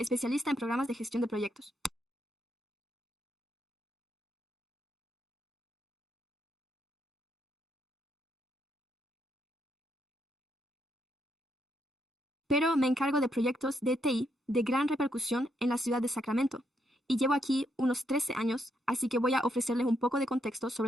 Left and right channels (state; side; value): normal; both; correlation 0.77